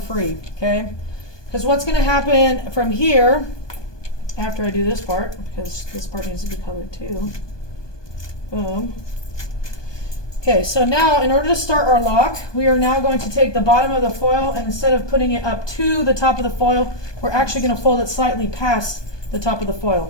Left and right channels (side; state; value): right; late; 1.2 ms